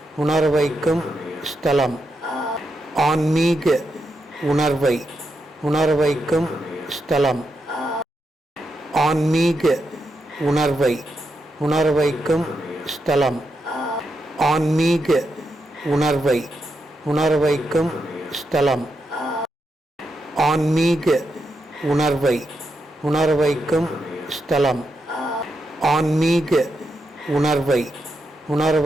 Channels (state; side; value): normal; both; correlation 0.84